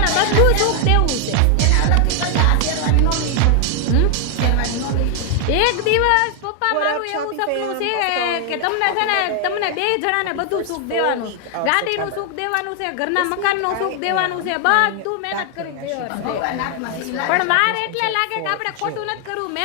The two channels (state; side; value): different; both; correlation 0.00